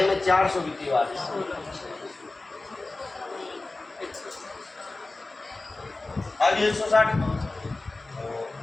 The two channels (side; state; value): right; quieter; 3.2 dB